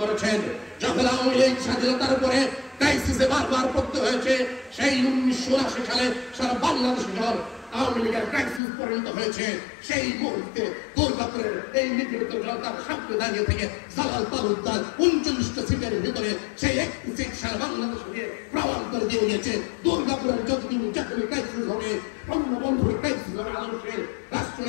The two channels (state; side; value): drops out; right; at 8.6 s